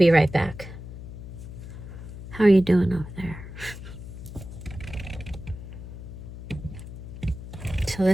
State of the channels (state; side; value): noise; left; hum, 11 dB below the sound